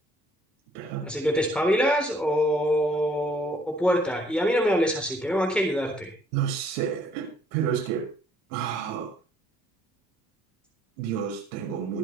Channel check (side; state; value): both; normal; correlation 0.62